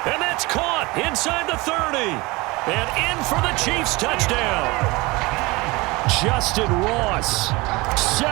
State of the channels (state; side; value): quieter; left; 23.4 dB